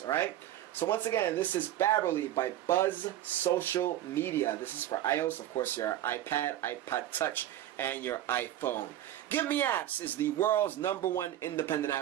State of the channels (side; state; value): left; quieter; 12.8 dB